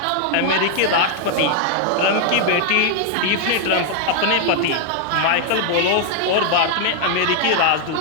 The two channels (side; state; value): both; different; correlation 0.00